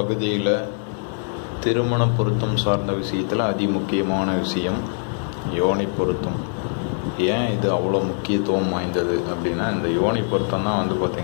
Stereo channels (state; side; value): silent; right; 59 dB below the other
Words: திருமண பொருத்தம் சார்ந்த விஷயத்தில் அதிமுக்கியமான விஷயம் யோனி பொருத்தம். ஏன் இது அவ்வளோ முக்கியத்துவம் வாய்ந்தது அப்படின்னா, இந்த யோனி பொருத்தம் தான்